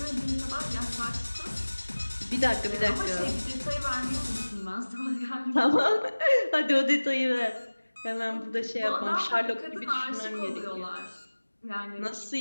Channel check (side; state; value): both; inverted; correlation -1.00